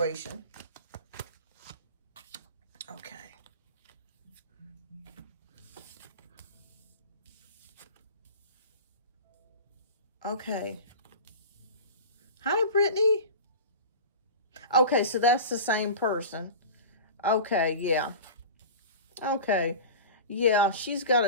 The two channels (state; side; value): inverted; both; correlation -0.33